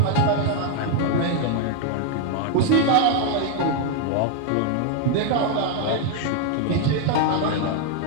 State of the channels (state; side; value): different; both; correlation 0.00